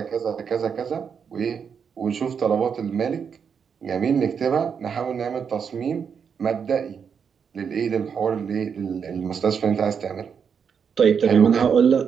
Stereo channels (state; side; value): quieter; left; 6.7 dB